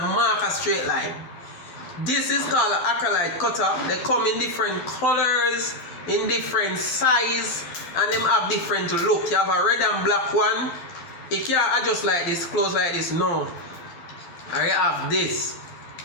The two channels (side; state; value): right; late; 13 ms